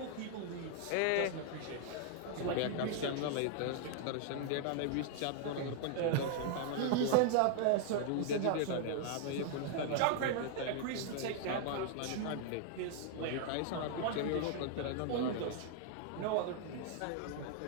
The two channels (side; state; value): both; different; correlation 0.00